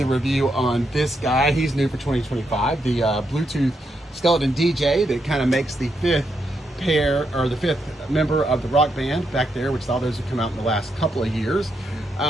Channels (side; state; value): both; normal; correlation 0.81